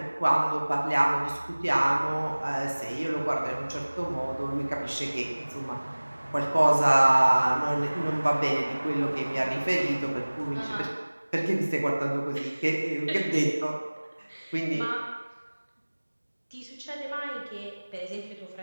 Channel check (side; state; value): both; inverted; correlation -1.00